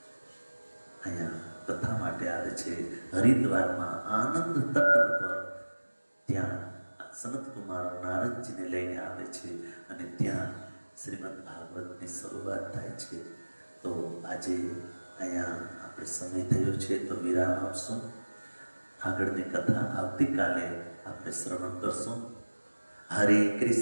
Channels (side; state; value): both; inverted; correlation -1.00